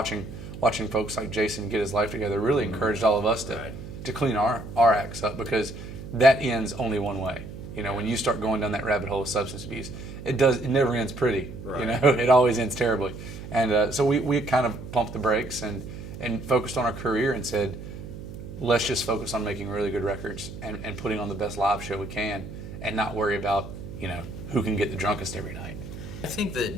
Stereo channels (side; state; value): right; noise; hum, 11 dB below the sound